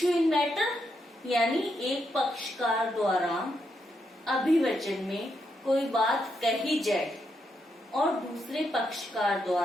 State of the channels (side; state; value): both; normal; correlation 0.81